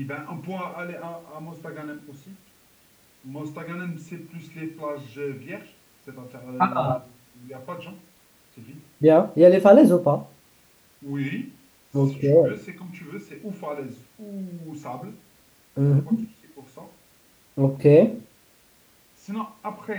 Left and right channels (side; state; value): both; identical; correlation 1.00